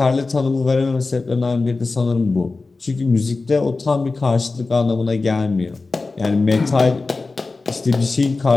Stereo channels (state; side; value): quieter; right; 3.7 dB